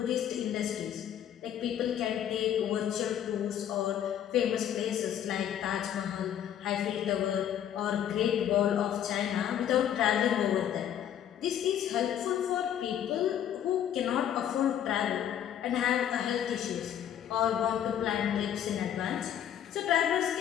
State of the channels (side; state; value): right; quieter; 10.1 dB